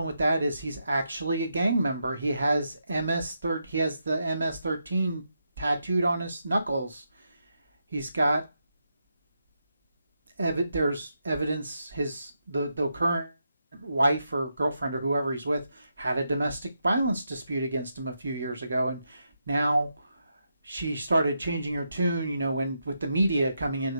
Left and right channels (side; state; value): both; inverted; correlation -0.83